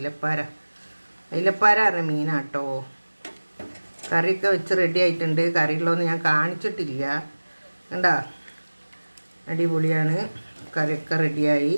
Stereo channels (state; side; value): inverted; both; correlation -1.00